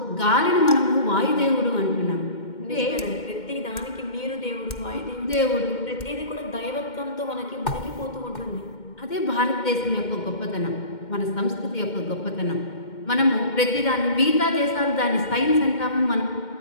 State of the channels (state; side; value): late; right; 2.1 ms